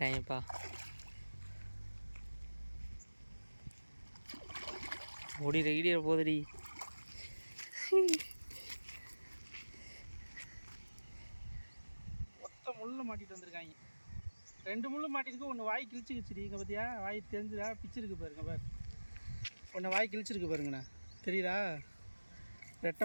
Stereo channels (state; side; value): inverted; both; correlation -1.00